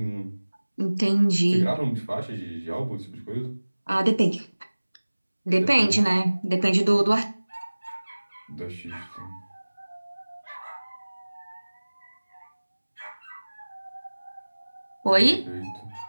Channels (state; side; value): inverted; both; correlation -1.00